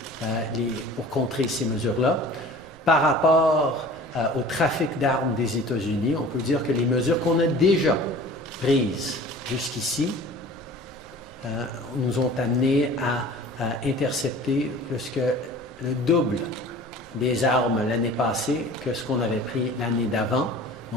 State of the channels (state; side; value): normal; both; correlation 0.43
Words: pour contrer ces mesures-là. Par rapport au trafic d'armes des États-Unis, on peut dire que les mesures qu'on a déjà prises jusqu'ici nous ont amenés à intercepter plus que le double des armes l'année passée que ce qu'on avait pris l'année d'avant.